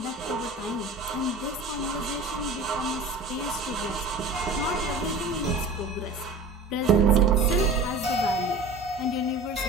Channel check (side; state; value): left; quieter; 3.1 dB